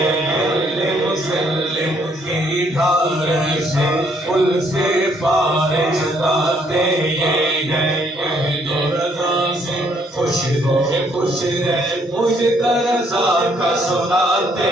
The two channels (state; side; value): normal; both; correlation 0.68